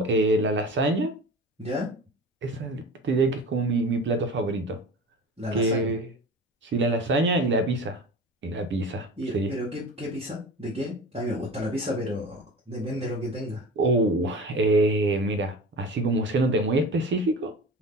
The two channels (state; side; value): normal; both; correlation 0.35